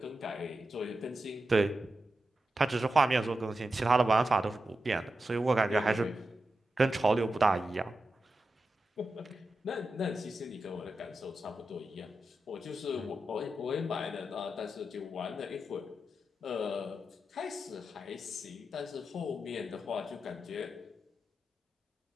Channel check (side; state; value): both; normal; correlation 0.90